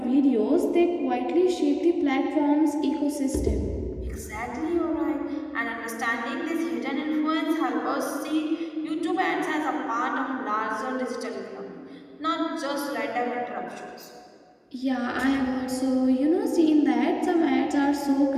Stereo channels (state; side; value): identical; both; correlation 1.00